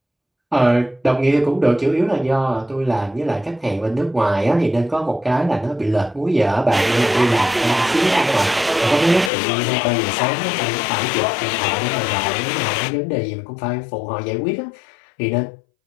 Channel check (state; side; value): drops out; right; at 9.3 s